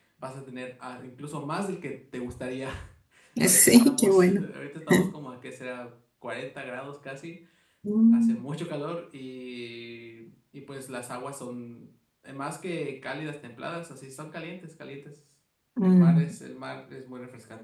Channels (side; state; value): both; identical; correlation 1.00